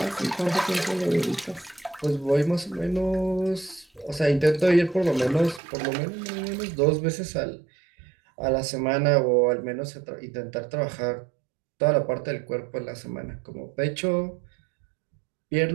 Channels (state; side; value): drops out; left; at 5.6 s